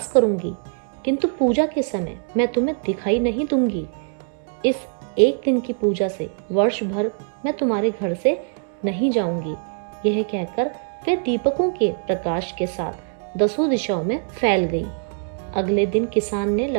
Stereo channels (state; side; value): silent; left; digital silence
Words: करूंगी, किंतु पूजा के समय मैं तुम्हें दिखाई नहीं दूंगी। इस एक दिन की पूजा से वर्ष भर मैं तुम्हारे घर से नहीं जाऊंगी। यह कहकर वे दीपकों के प्रकाश के साथ 10 दिशाओं में फैल गई। अगले दिन किसान ने